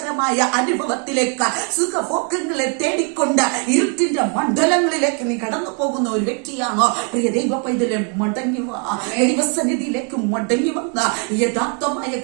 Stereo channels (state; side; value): quieter; left; 39.4 dB